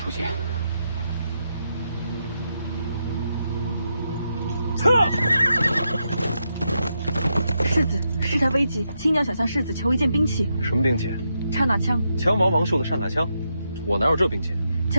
现。撤！世子，事态危急，亲娘想向世子求一件兵器。什么兵器？刹那枪。枪王王寿的刹那枪，我哪有这兵器？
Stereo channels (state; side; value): inverted; both; correlation -0.83